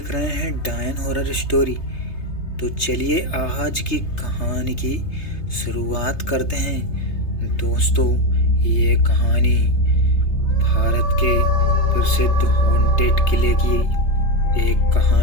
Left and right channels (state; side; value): late; right; 3.3 ms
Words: रहे हैं डायन हॉरर स्टोरी। तो चलिए आज की कहानी की शुरुआत करते हैं। दोस्तों, ये कहानी भारत के प्रसिद्ध हॉन्टेड किले की एक